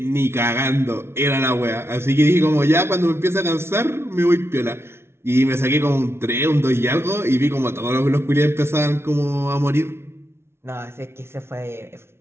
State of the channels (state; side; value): late; left; 0.12 ms